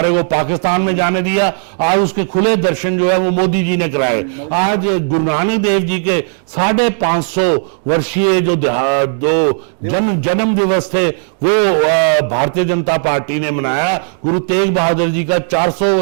को पाकिस्तान में जाने दिया। आज उसके खुले दर्शन जो है वो मोदी जी ने कराए। आज गुरु नानक देव जी के 550 वर्षीय जो जन्म दिवस थे वो भारतीय जनता पार्टी ने मनाया। गुरु तेग बहादुर जी का 400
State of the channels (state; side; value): silent; left; digital silence